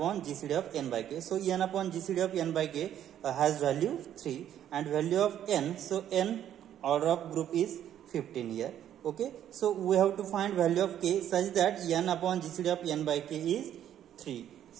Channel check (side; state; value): left; quieter; 10.7 dB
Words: GCD of n by K. So n upon GCD of n by K has value 3 and value of n. So n order of group is 15 here. Okay, so we have to find value of K such that n upon GCD of n by K is 3.